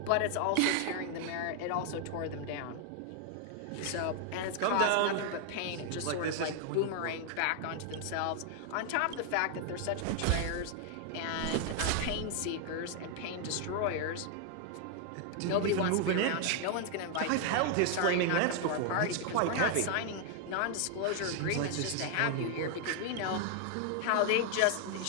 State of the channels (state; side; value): different; both; correlation 0.00